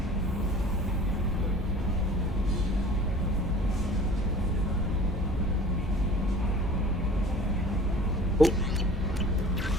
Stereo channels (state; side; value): normal; both; correlation 0.46